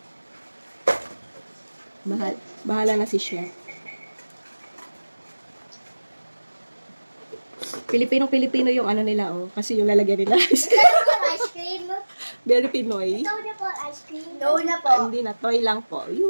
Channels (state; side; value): inverted; both; correlation -1.00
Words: Bahala na si Chef. Pilipino yung ano nila, oh. Kasi yung lalagyan nila. Ito po ice cream. Very Pinoy. Ito na po ice cream. No na po. Hindi na, toy lang po.